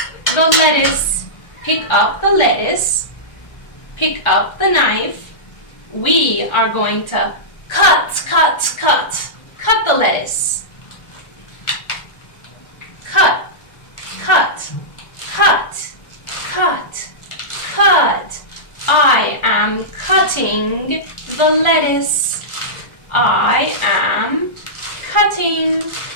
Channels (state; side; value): late; right; 1.4 ms